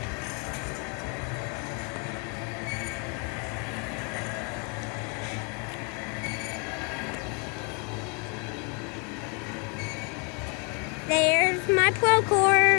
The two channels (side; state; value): right; quieter; 33.5 dB